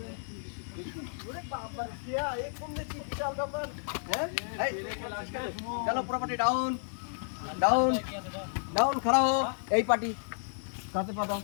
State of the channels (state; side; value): silent; right; 57 dB below the other